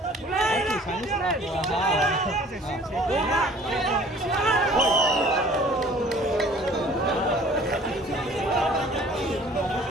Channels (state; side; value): normal; both; correlation 0.51